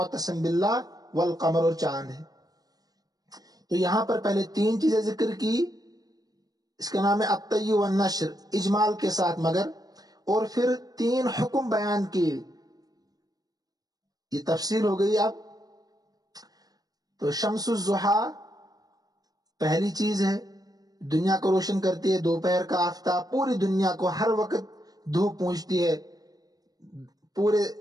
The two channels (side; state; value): left; late; 0.18 ms